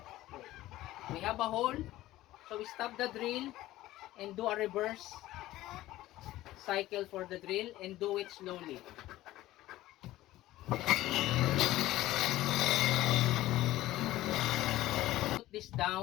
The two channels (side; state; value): right; quieter; 15.9 dB